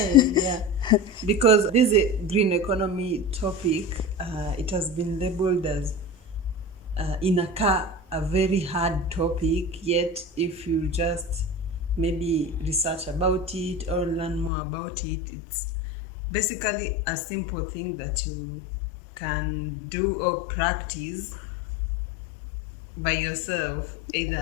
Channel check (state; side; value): drops out; right; at 14.5 s